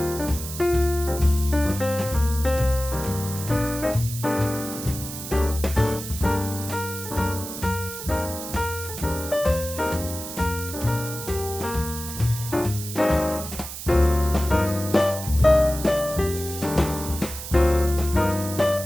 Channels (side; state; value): right; noise; hiss, 9 dB below the sound